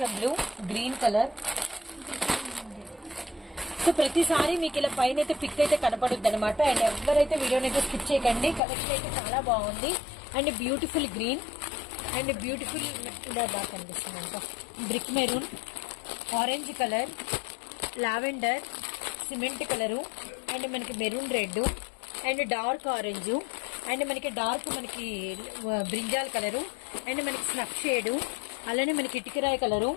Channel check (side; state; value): right; drops out; at 8.6 s